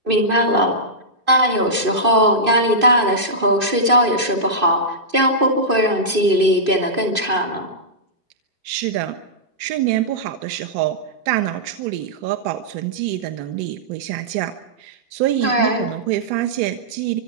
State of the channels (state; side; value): late; left; 2.5 ms